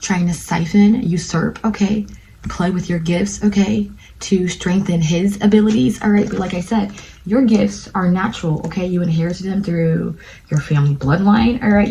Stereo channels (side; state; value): both; identical; correlation 1.00